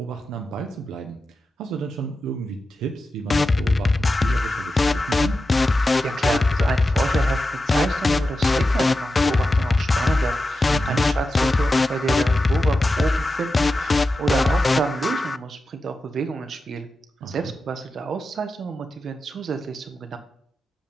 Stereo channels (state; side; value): normal; both; correlation 0.91